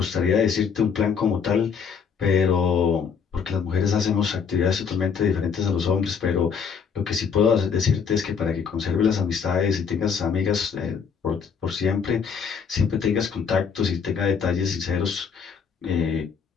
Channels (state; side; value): quieter; right; 6.4 dB